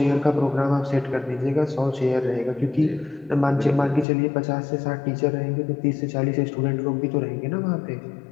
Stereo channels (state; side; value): drops out; right; at 4.0 s